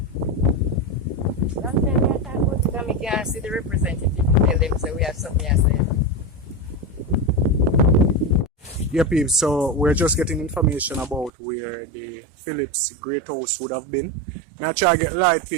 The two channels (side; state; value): left; drops out; at 11.3 s